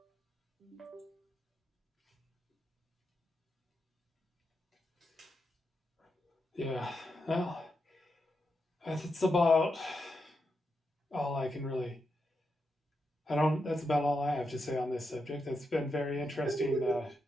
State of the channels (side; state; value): both; normal; correlation 0.85